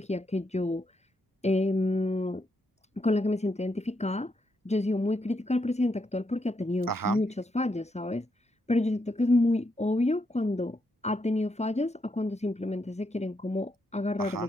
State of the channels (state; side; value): normal; both; correlation 0.80